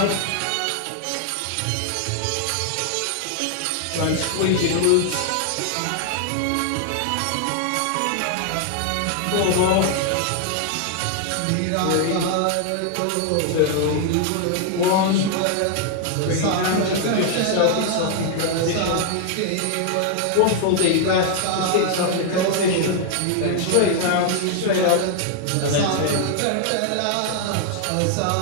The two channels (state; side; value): different; both; correlation 0.00